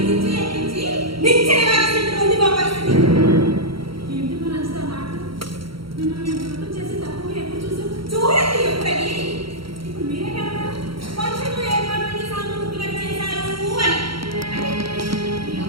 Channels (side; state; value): left; late; 0.74 ms